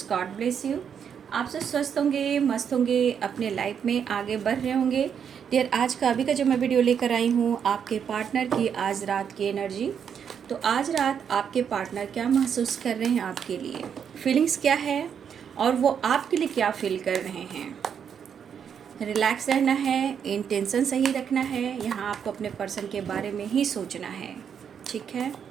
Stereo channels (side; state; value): left; quieter; 7.7 dB